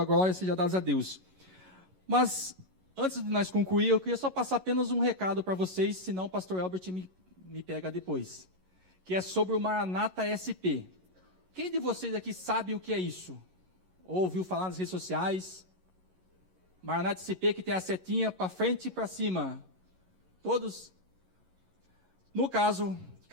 glória seja dada a Deus. Mas, antes de nós concluir, eu queria só passar apenas um recado para vocês, senão o pastor Albert me pega depois. Que é sobre o Maranata SP. Quem de vocês aqui sabe o que é isso? Ou ouviu falar nas redes sociais? Maranata SP, que tem a setinha para frente e para cima. Todos? No caso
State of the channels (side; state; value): left; late; 11 ms